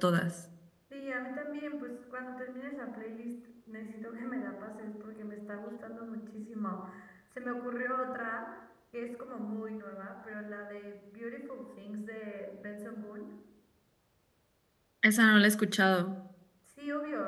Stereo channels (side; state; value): both; identical; correlation 1.00